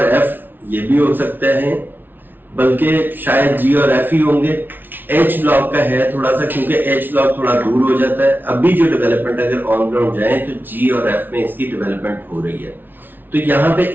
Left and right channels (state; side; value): late; left; 0.093 ms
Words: एफ ये भी हो सकते हैं, बल्कि शायद जी और एफ ही होंगे। एच ब्लॉक का है थोड़ा सा, क्योंकि एच ब्लॉक थोड़ा दूर हो जाता है। अभी जो डेवलपमेंट अगर ऑन ग्राउंड जाए तो जी और एफ में इसकी डेवलपमेंट हो रही है। तो यहाँ पे